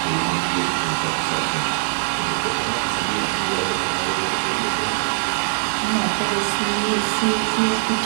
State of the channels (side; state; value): left; silent; 64 dB below the other